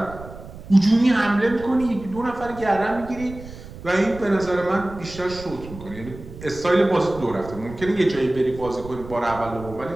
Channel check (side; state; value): right; noise; rumble, 15 dB below the sound